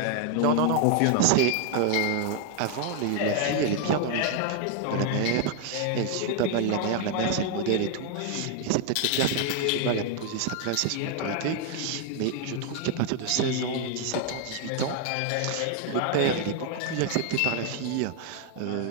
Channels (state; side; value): different; both; correlation 0.00